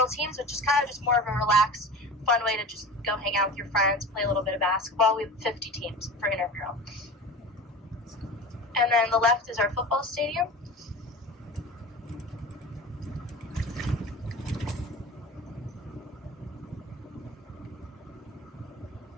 teams, which is kind of just more of a relaxed, fun way to just go hang out with your friends, play a little bit of basketball. We have 50 teams for intramural. And then the left is our football stadium.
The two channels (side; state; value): both; normal; correlation 0.33